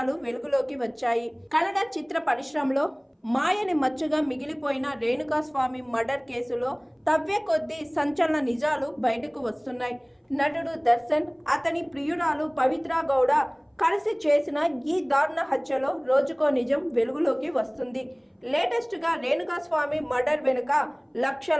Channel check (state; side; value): identical; both; correlation 1.00